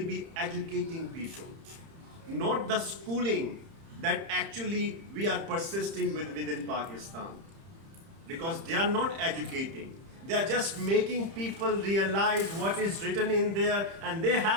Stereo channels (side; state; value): left; late; 30 ms